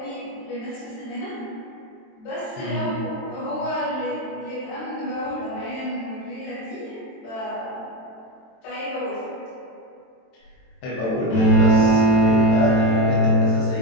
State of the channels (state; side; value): late; right; 22 ms